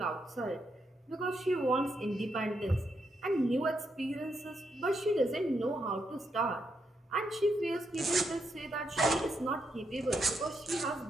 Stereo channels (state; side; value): normal; both; correlation 0.80